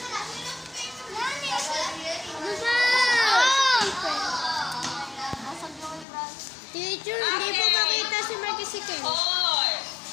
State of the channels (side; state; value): right; drops out; at 6.1 s